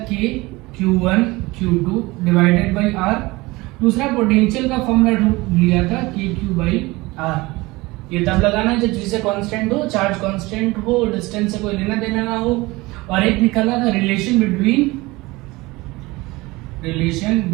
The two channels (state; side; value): quieter; left; 21.7 dB